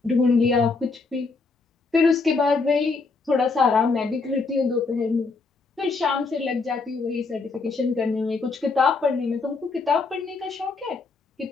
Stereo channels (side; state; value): right; quieter; 4.2 dB